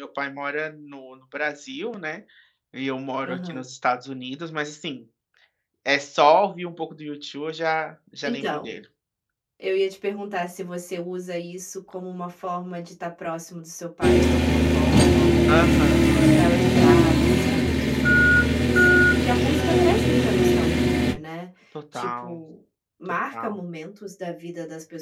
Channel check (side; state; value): both; identical; correlation 1.00